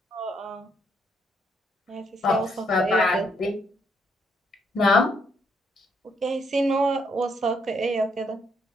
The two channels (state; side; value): normal; both; correlation 0.73